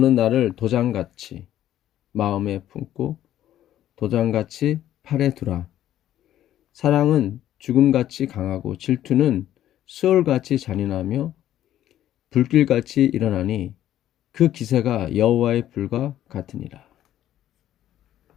나를 도장같이 마음에 품고 도장같이 팔에 두라. 사랑은 죽음같이 강하고 질투는 수월같이 잔인하며 불길같이 일어나니 그 기세가 여호와의 불과 같으니라.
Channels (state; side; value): quieter; right; 12.3 dB